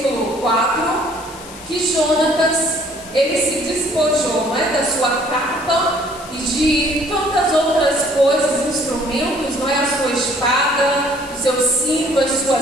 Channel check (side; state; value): left; noise; hiss, 17 dB below the sound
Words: 4, que Jonatas, ele se despojou, não é, da sua capa e de tantas outras coisas, instrumentos, não é, a sua espada, o seu cinto, as